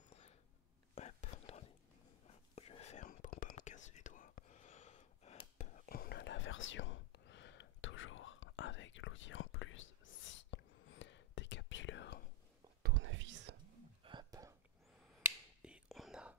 hop, attendez, je ferme pour pas me casser les doigts. Hop, on a la version toujours avec l'outil en plus, si décapsuleur, tournevis, hop, et on a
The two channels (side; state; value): both; normal; correlation -0.02